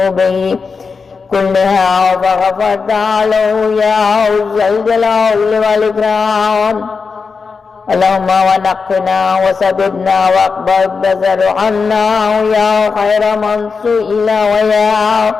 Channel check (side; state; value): right; quieter; 5.0 dB